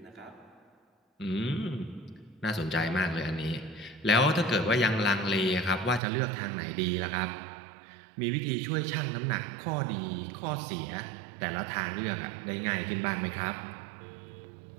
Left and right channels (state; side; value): drops out; left; at 6.0 s